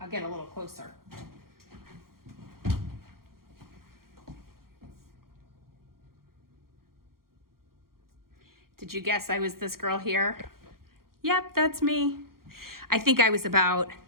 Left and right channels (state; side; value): late; left; 0.93 ms